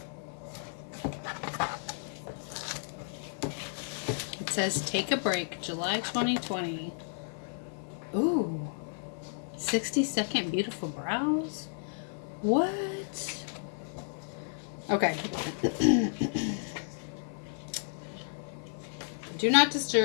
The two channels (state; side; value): silent; right; digital silence